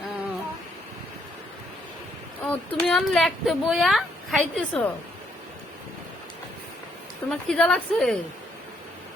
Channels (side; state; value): both; normal; correlation 0.72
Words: ও ও তুমি অন লেখতে বইয়া খাইতেছ? তোমার খিদা লাগছে?